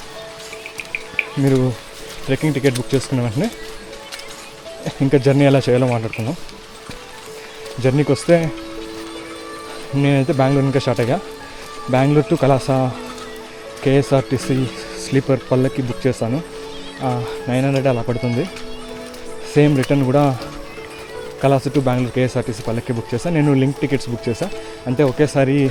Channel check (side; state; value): both; identical; correlation 1.00